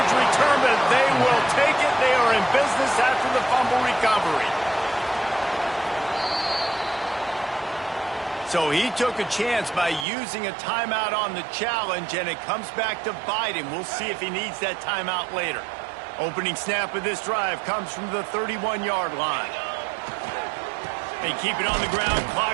return, but they will take it. They are in business after the fumble recovery. So he took a chance by using a timeout on the challenge, and it comes back to bite him. We'll see if he needs that timeout later. Opening snap of this drive comes from the 31-yard line. They keep it on the ground.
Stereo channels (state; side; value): drops out; left; at 10.1 s